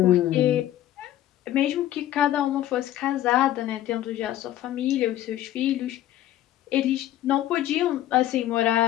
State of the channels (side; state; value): right; quieter; 13.2 dB